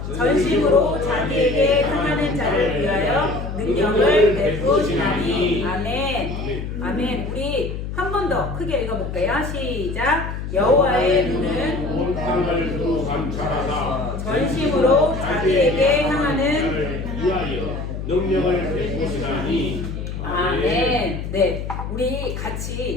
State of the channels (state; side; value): noise; left; hum, 6 dB below the sound